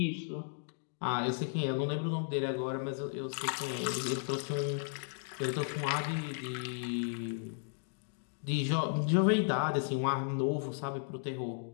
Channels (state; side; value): silent; right; digital silence